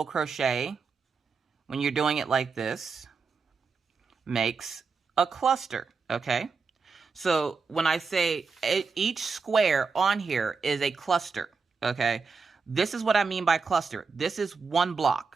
crochet, when you're doing it like this, makes a cluster, okay? So when I say each square on here is a cluster, okay? This is what I mean by cluster. This is one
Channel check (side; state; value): left; quieter; 5.0 dB